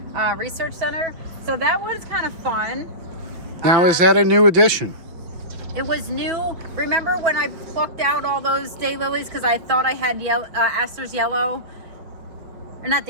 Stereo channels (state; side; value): late; left; 6.0 ms